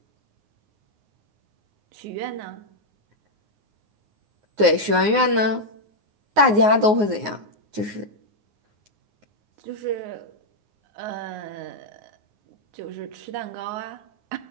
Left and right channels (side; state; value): left; late; 9.6 ms